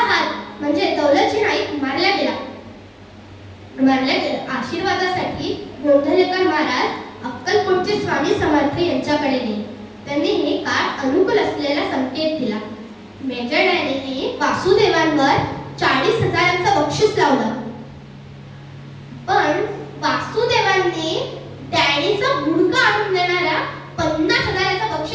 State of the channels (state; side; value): identical; both; correlation 1.00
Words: हात म्हणजे दौलतजी नाईक मारला गेला. आशीर्वादासाठी गोंधळेकर महाराज अक्कलकोटचे स्वामी समर्थ यांच्याकडे गेले. त्यांनी हे काळ अनुकूल असलेला संकेत दिला. मेजर डॅनीने वासुदेवांवर 40,000चं बक्षीस लावलं, पण वासुदेवांनी डॅनीचा गुडघा आणून देणाऱ्या 50,000चं